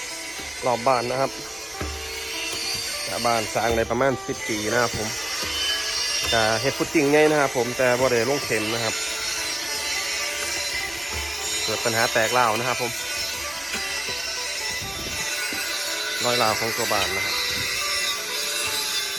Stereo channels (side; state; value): right; noise; rumble, 28 dB below the sound